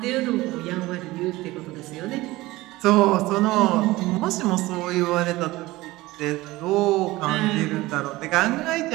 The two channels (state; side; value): quieter; left; 19.1 dB